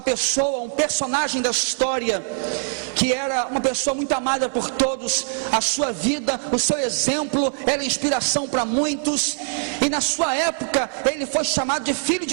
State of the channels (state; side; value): silent; left; 60 dB below the other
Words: pessoa, um personagem da história, que era uma pessoa muito amada por todos. A sua vida, o seu exemplo era inspiração para muitos, e na sua época ele foi chamado de Filho